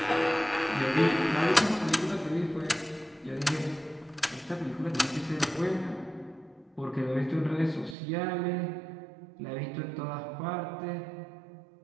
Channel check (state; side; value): drops out; left; at 8.0 s